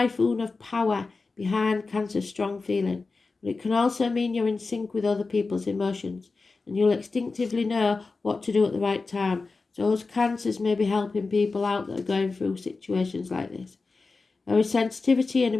of power behind Cancer's strong feeling, but it can also mean you're in sync with other people's emotions, and you'll instinctively know what to do at the right time. So those Cancers may be helping people out that are going through situations like this. There is sensitivity and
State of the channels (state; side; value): quieter; right; 4.0 dB